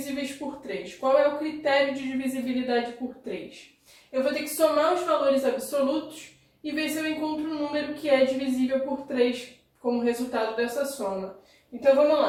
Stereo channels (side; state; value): both; identical; correlation 1.00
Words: por 3. Qual é o critério de divisibilidade por 3? Eu vou ter que somar os valores absolutos e ver se eu encontro um número que é divisível por 3 como resultado dessa soma. Então, vamos